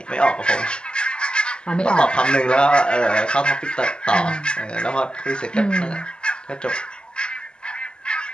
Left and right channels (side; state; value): right; late; 0.049 ms